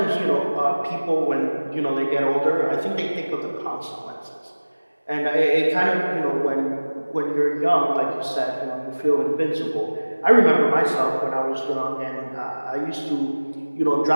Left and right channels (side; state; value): both; inverted; correlation -1.00